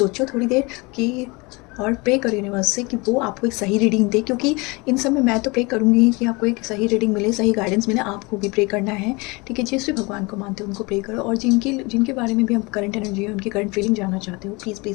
थोड़ी देर कि, और प्रे करो यूनिवर्स से कि वो आपको एक सही रीडिंग दे, क्योंकि इन सब में मैं तो प्रे करूँगी कि आपको एक सही रीडिंग मिले, सही गाइडेंस मिले, आपको भी प्रे करना है। ठीक है, जिस भी भगवान को मानते हो उनको प्रे करो, और जिनके बारे में भी आप करंट एनर्जी है, उनकी करंट फीलिंग जानना चाहते हो, प्लीज़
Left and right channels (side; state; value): right; quieter; 26.3 dB